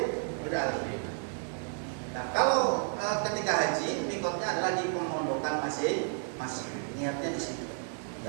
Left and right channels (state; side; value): silent; left; 57 dB below the other